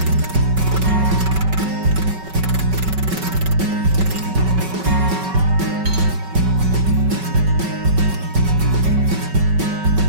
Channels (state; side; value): late; left; 5.3 ms